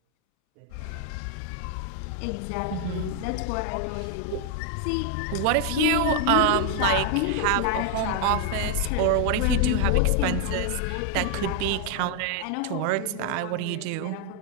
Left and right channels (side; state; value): both; different; correlation 0.00